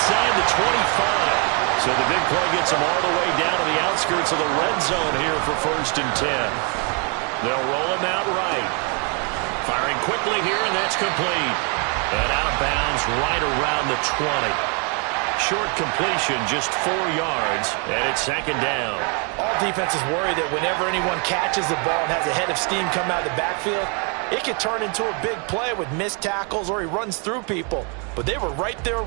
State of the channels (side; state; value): left; quieter; 36.4 dB